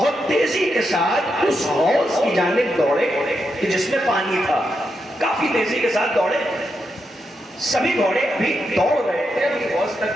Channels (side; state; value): both; normal; correlation 0.84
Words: تیزی کے ساتھ اس حوض کی جانب دوڑے کہ جس میں پانی تھا، کافی تیزی کے ساتھ دوڑے۔ سبھی گھوڑے ابھی دوڑ رہے تھے، ابھی حوض